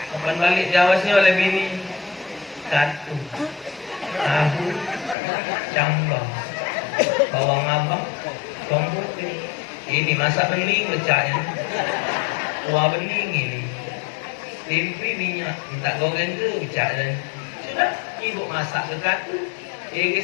Kapan balik Jawa sini oleh bini, katu, tahu, cambah, bawang abang, bawang putih. Ini masak bening pecahnya, kuah bening ini, tempe minyak, minta goreng ke pecah. Sudah, ibu masak ke katu,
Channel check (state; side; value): drops out; right; at 5.2 s